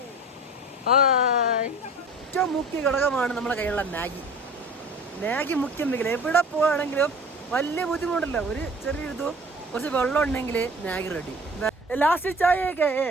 ഏറ്റവും മുഖ്യ ഘടകമാണ് നമ്മുടെ കയ്യിലുള്ള മാഗി. മാഗി മുഖ്യം വെക്കില്ല. എവിടെ പോവാണെങ്കിലും വലിയ ബുദ്ധിമുട്ടില്ല. ഒരു ചെറിയൊരിതും കുറച്ച് വെള്ളം ഉണ്ടെങ്കിൽ മാഗി റെഡി. ലാസ്റ്റ് ചായയൊക്കെ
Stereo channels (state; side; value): normal; both; correlation 0.43